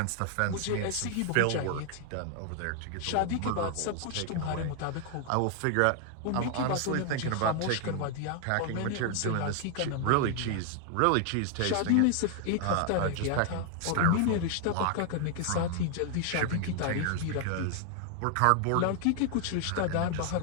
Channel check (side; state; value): both; different; correlation 0.00